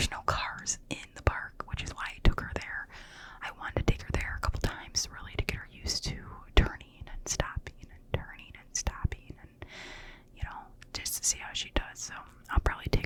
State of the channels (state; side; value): identical; both; correlation 1.00